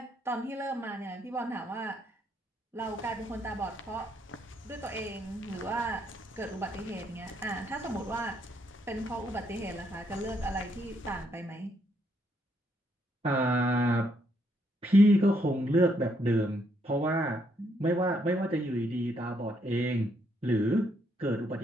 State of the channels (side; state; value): both; normal; correlation 0.74